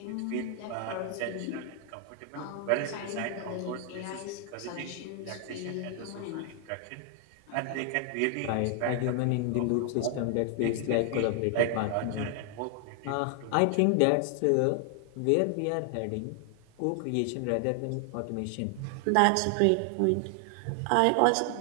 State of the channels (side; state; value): both; different; correlation 0.00